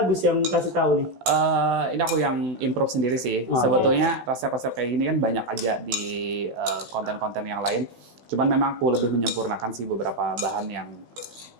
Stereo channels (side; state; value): left; late; 16 ms